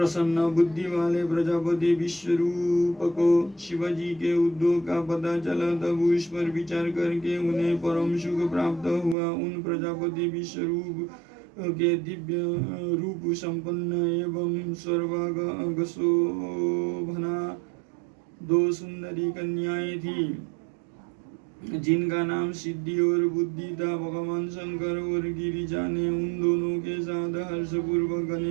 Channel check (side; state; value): left; drops out; at 9.2 s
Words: बुद्धि वाले प्रजापति विश्वरूप को शिवजी के उद्योग का पता चला, तब उस पर विचार करके उन्हें परम सुख प्राप्त हुआ। उन प्रजापति विश्वरूप के दिव्य रूप संपन्न एवं सर्वांग शोभना दो सुंदरी कन्याएं थी, जिनका नाम सिद्धि और बुद्धि था। भगवान शंकर और गिरिजा ने उन दोनों के साथ हर्षपूर्वक